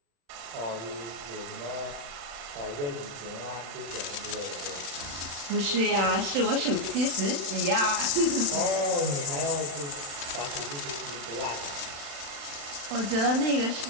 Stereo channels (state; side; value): late; left; 36 ms